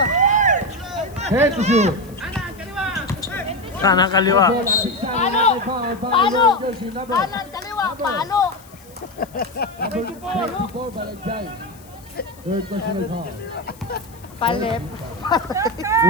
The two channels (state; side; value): noise; left; hiss, 25 dB below the sound